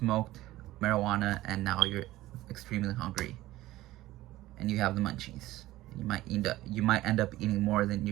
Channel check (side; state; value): left; quieter; 16.5 dB